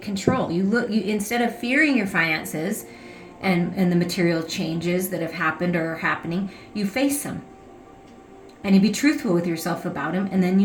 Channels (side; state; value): both; identical; correlation 1.00